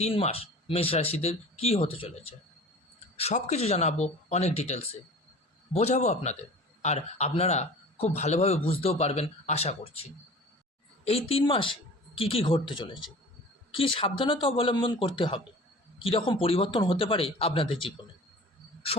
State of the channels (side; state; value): both; normal; correlation 0.41